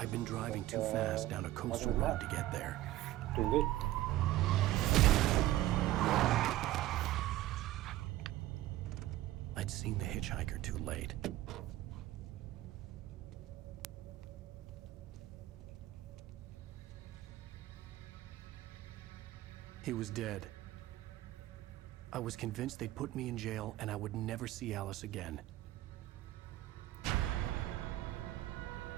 been driving too fast down a coastal road to get there. Doing good. I'd seen the hitchhiker too late. He was dead. I was convinced they'd put me in jail and I would never see Alice again.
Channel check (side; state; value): left; quieter; 15.3 dB